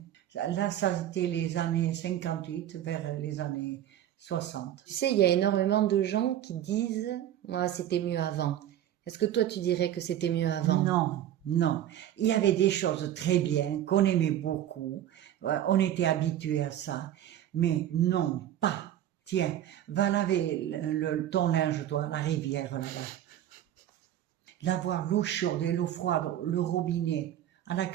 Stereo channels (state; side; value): quieter; left; 11.5 dB